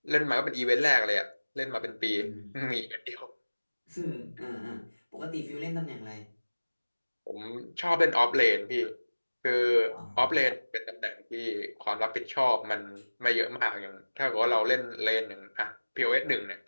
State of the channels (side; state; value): both; inverted; correlation -1.00